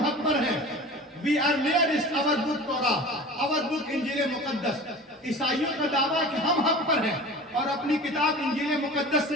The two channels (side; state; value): both; normal; correlation 0.38